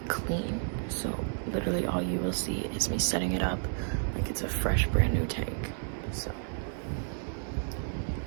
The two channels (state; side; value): silent; left; digital silence